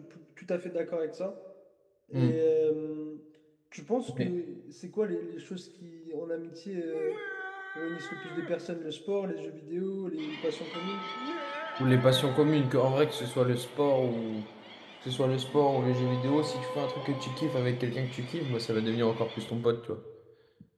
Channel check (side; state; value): both; identical; correlation 1.00